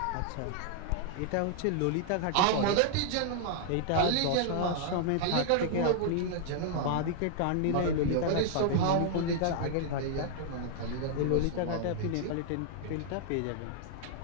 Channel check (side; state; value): both; different; correlation -0.01